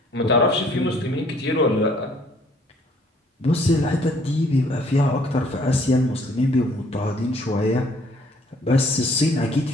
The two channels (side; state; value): both; normal; correlation 0.61